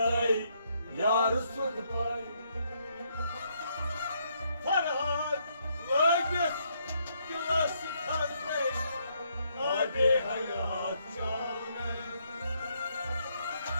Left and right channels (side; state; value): both; inverted; correlation -0.73